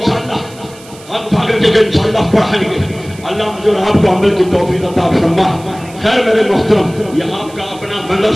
ہم کر کے انشاءاللہ پڑھائیں گے۔ اللہ مجھے اور آپ کو عمل کی توفیق عطا فرما۔ خیر میرے محترم، یہ آپ کا اپنا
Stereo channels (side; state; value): right; noise; hiss, 21 dB below the sound